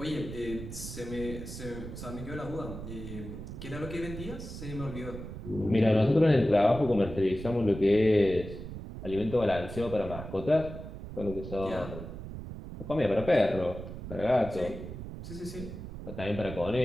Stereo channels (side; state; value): right; noise; rumble, 10 dB below the sound